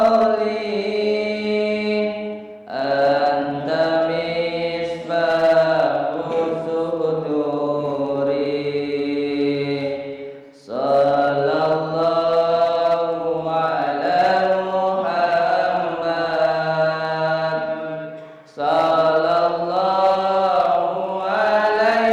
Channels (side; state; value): both; identical; correlation 1.00